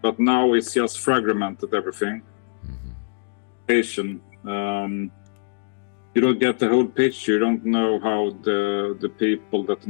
now it's just fragmented everything. You don't get the whole picture. You don't know how the people that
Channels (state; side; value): silent; right; digital silence